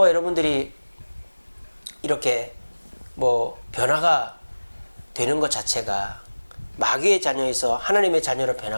여러분들이 이렇게 뭐 변화가 되는 것 자체가 마귀의 자녀에서 하나님의 자녀로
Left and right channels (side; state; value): both; inverted; correlation -1.00